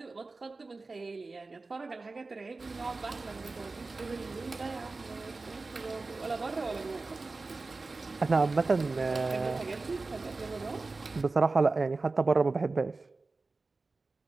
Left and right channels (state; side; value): quieter; left; 3.6 dB